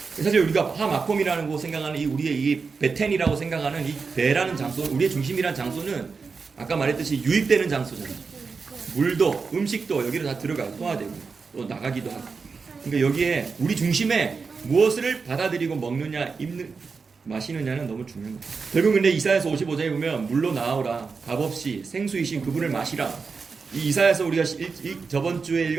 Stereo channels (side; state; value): left; quieter; 4.9 dB